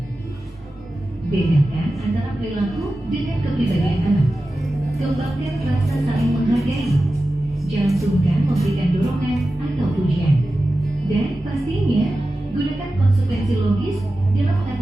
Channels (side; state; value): both; normal; correlation 0.94